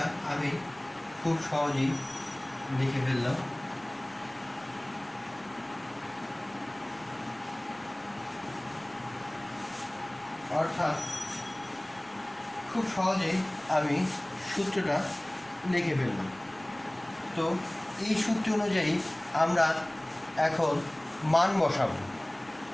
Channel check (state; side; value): noise; left; rumble, 30 dB below the sound